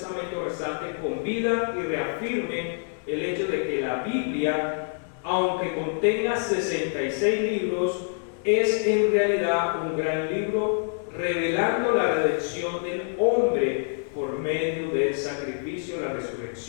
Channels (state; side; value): silent; right; 61 dB below the other